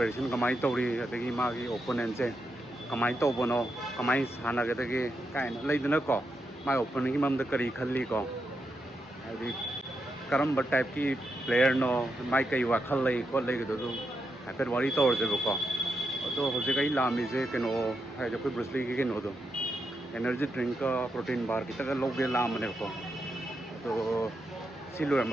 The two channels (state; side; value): normal; both; correlation 0.84